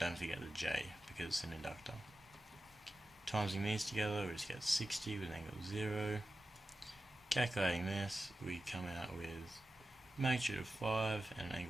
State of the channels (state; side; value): normal; both; correlation 0.93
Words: forget the J, because it's an inductor. Timesing these together, we just get 60 with an angle of 0. Calculating this, we come out with magnitude of 5 and an